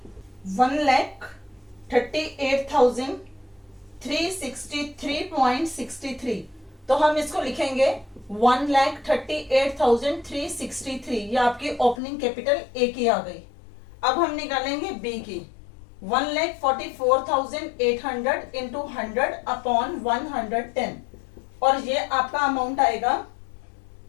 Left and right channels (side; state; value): right; drops out; at 12.0 s